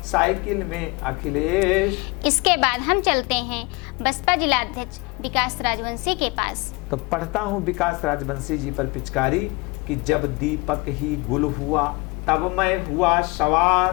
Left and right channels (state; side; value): quieter; right; 26.1 dB